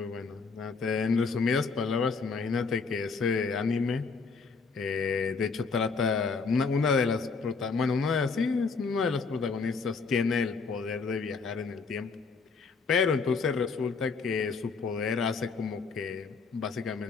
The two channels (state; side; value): quieter; right; 4.8 dB